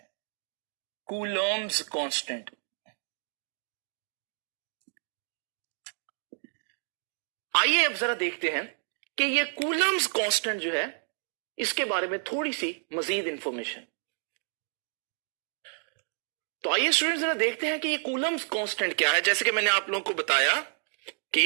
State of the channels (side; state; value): left; silent; 58 dB below the other